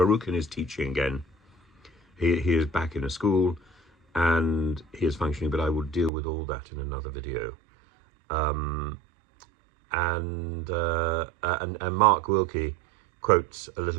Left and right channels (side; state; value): left; drops out; at 6.1 s